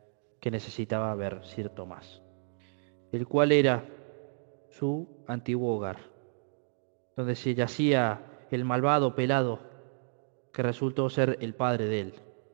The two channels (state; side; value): silent; left; digital silence